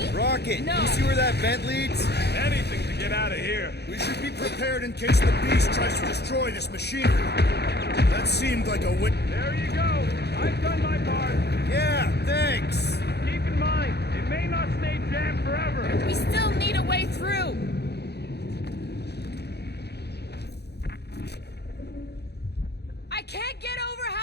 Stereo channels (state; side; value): late; right; 0.48 ms